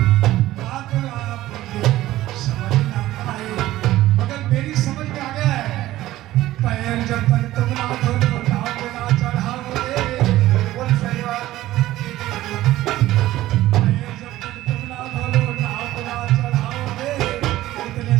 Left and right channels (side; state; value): left; quieter; 15.5 dB